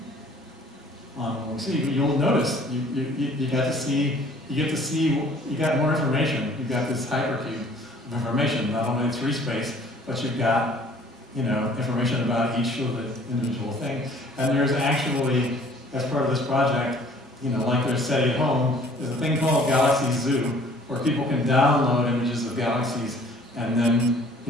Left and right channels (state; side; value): normal; both; correlation 0.54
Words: On what we see. You'll notice you get to see you got more information. You've got this hypercube of information, not only 3 space, but you've got information about each of the individual things. And there's actually, as part of this project, like there's SETI at home, there's a thing called Galaxy Zoo, where people can download images of galaxies and then,